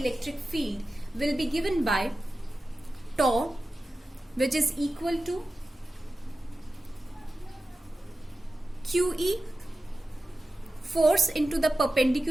field will be given by tau, which is equal to QE, force into the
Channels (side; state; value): both; normal; correlation 0.94